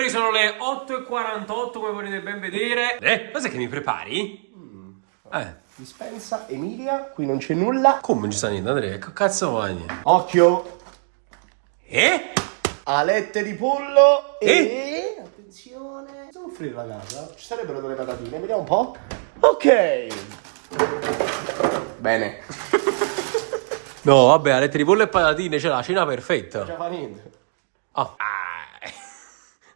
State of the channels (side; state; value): left; silent; 58 dB below the other